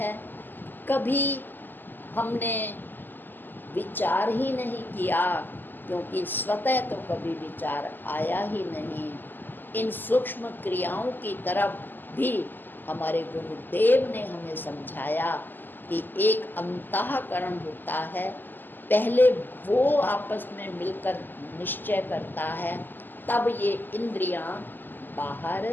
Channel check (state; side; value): late; right; 0.090 ms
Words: कभी हमने विचार ही नहीं किया क्योंकि स्वतः तो कभी विचार आया ही नहीं। इन सूक्ष्म क्रियाओं की तरफ भी हमारे गुरुदेव ने हमें समझाया कि एक अंतःकरण होता है, पहले वो आपस में मिलकर निश्चय करता है, तब ये इंद्रियां बाहर